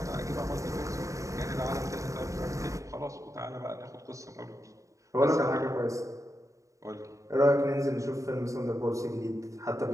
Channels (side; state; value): left; late; 0.15 ms